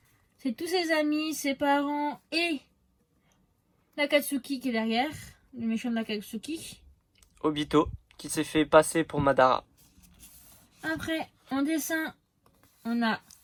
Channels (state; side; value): identical; both; correlation 1.00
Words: c'est tous ses amis, ses parents et l'Akatsuki qui est derrière. Le méchant de l'Akatsuki. Obito, qui s'est fait passer pour Madara. Après, en dessin, on a